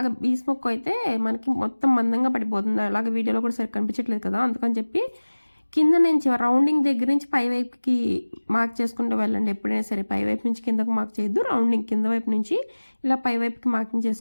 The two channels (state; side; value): inverted; both; correlation -1.00